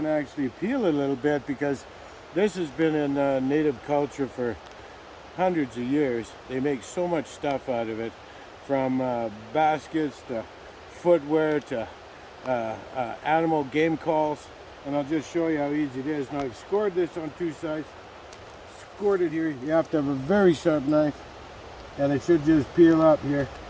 actually peel it a little bit, because this has been in native culture for hundreds of years. They make so much stuff out of it, from baskets to footwear to animal game calls, and I'll just show you how easy it is. Now I've scored this on two sides. Scored it here. You have to have a very sharp knife, and it should just peel up here,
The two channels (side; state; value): both; identical; correlation 1.00